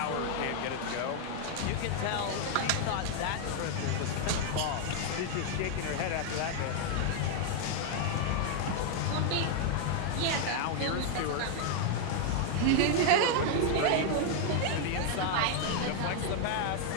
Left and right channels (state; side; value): different; both; correlation 0.00